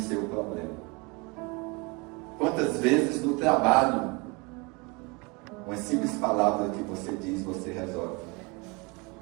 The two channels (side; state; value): left; quieter; 28.4 dB